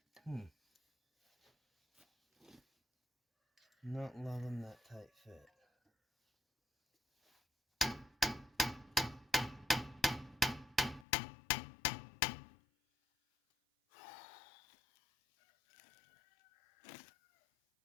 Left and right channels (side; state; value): right; drops out; at 11.1 s